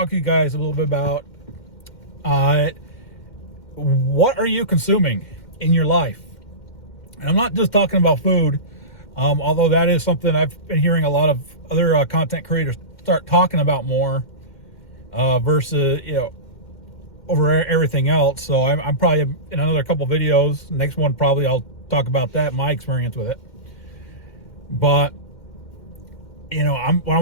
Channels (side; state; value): right; late; 2.1 ms